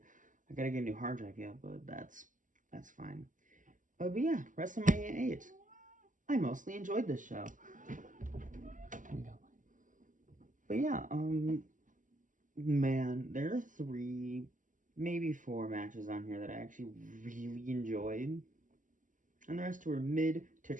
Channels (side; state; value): left; late; 0.38 ms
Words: I gotta get a new hard drive yet, but that's fine. But yeah, WrestleMania 8. I mostly enjoyed this show. But yeah, man, there are 3, maybe 4 matches on here that I actually really enjoyed. And the rest were mid to